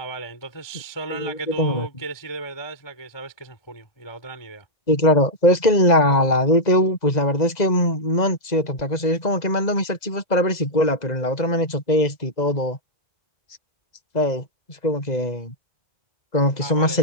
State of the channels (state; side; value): late; right; 2.0 ms